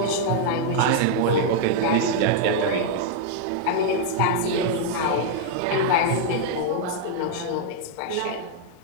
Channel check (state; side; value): different; both; correlation -0.01